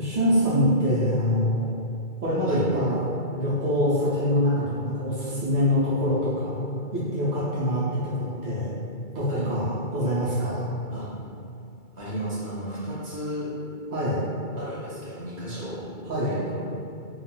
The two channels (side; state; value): right; late; 2.3 ms